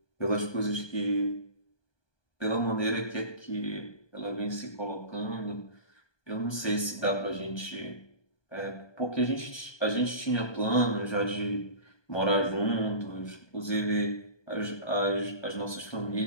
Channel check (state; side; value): late; right; 1.2 ms